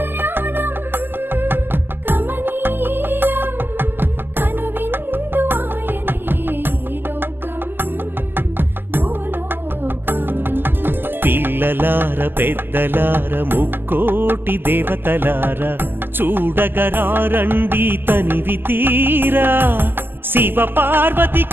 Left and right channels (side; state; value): left; late; 0.096 ms